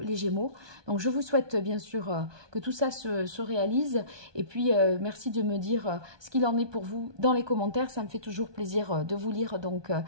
les Gémeaux. Donc je vous souhaite bien sûr que tout ça se réalise et puis merci de me dire ce qu'il en est pour vous dans les commentaires, ça me fait toujours plaisir de vous lire, donc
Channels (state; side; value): late; left; 1.2 ms